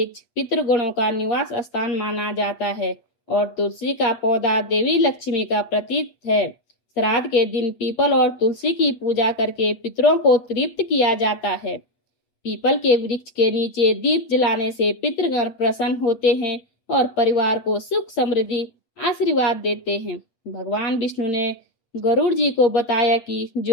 पितृगणों का निवास स्थान माना जाता है और तुलसी का पौधा देवी लक्ष्मी का प्रतीक है। श्राद्ध के दिन पीपल और तुलसी की पूजा करके पितरों को तृप्त किया जाता है। पीपल के वृक्ष के नीचे दीप जलाने से पितृगण प्रसन्न होते हैं और परिवार को सुख समृद्धि आशीर्वाद देते हैं। भगवान विष्णु ने गरुड़ जी को बताया कि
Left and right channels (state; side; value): late; right; 8.1 ms